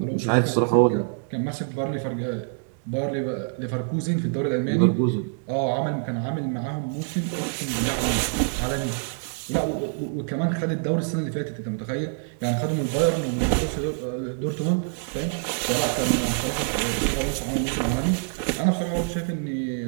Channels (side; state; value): left; silent; 61 dB below the other